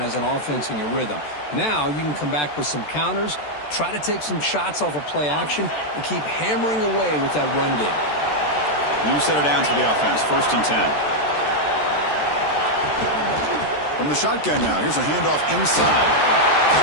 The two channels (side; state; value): right; late; 14 ms